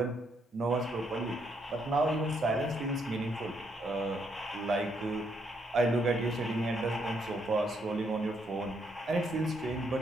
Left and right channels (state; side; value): normal; both; correlation 0.74